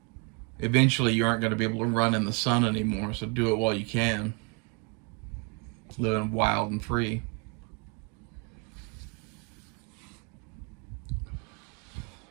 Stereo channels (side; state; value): left; quieter; 32.6 dB